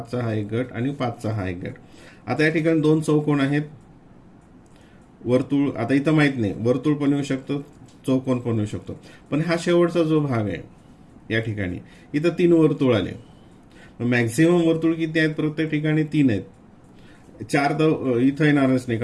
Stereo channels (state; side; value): identical; both; correlation 1.00